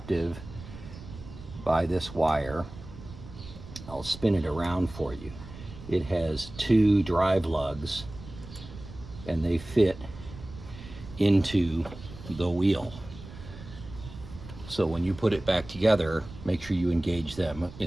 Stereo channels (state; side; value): noise; right; rumble, 15 dB below the sound